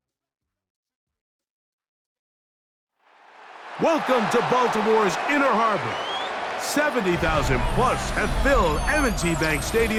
Welcome to Baltimore's Inner Harbor. 70,000 plus have filled M&T Bank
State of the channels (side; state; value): both; identical; correlation 1.00